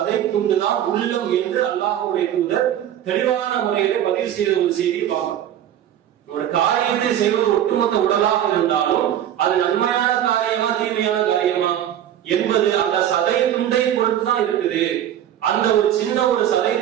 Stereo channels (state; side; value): quieter; left; 10.9 dB